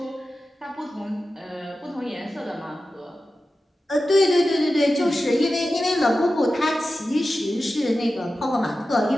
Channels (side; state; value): both; normal; correlation 0.93